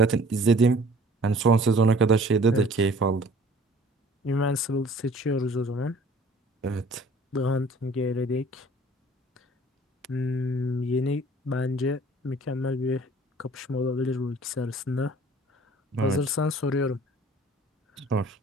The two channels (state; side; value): normal; both; correlation 0.52